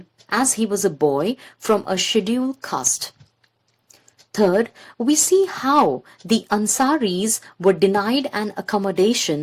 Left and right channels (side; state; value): both; identical; correlation 1.00